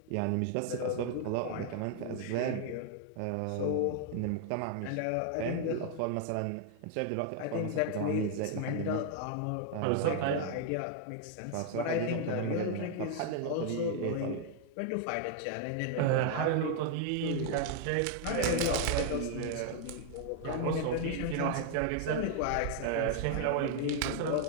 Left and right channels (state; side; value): different; both; correlation 0.00